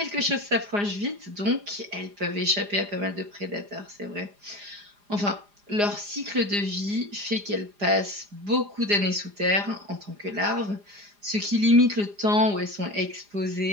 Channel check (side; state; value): left; late; 4.9 ms